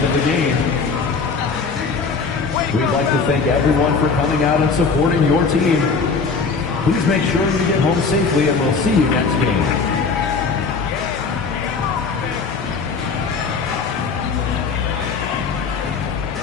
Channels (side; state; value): right; quieter; 4.9 dB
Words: of the game. We'd like to thank everyone for coming out and supporting your team. Please make sure you get home safely, and we'll see you next game.